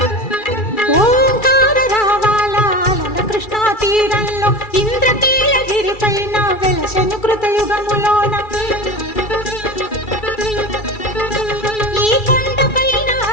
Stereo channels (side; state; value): right; late; 2.3 ms